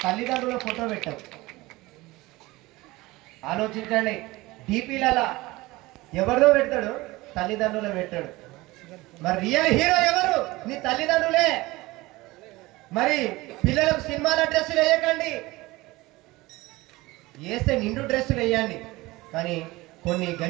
తల్లిదండ్రుల ఫోటో పెట్టావు. ఆలోచించండి. డీపీలలో ఎవరిదో పెడతాడు, తల్లిదండ్రులు పెట్టాడు. మరి రియల్ హీరో ఎవరు? నీ తల్లిదండ్రులే. మరి పిల్లలకు సినిమాల డ్రెస్సులు వేయకండి, వేస్తే నిండు డ్రెస్సులు వేయండి. కానీ కొన్ని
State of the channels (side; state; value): left; quieter; 20.5 dB